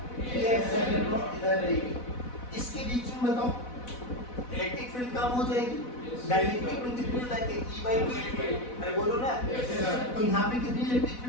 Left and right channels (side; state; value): right; late; 4.0 ms